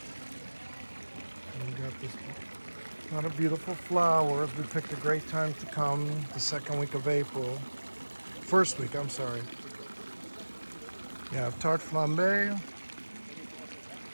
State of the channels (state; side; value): inverted; both; correlation -1.00